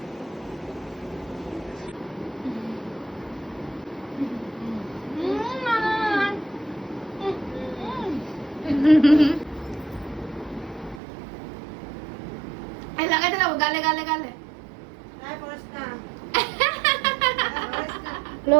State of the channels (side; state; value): left; drops out; at 11.0 s